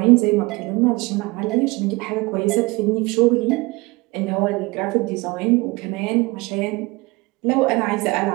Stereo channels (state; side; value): quieter; left; 23.8 dB